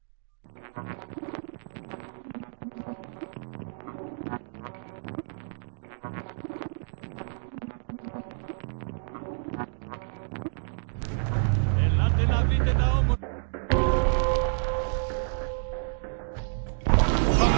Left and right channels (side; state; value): left; silent; digital silence